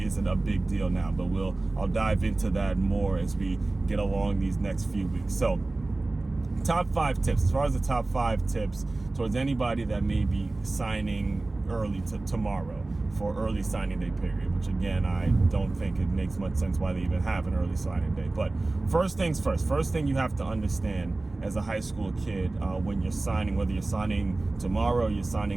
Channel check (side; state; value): left; quieter; 3.1 dB